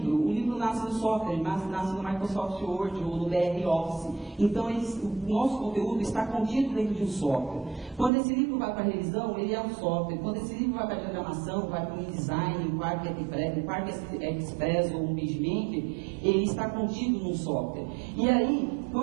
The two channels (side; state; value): left; drops out; at 8.1 s